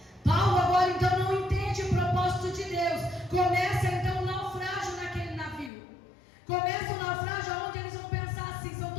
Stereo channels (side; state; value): right; drops out; at 5.7 s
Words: Paulo agora então não entende o propósito de Deus. Começa então o naufrágio naquele navio. Começa o naufrágio onde eles vão pensar assim: são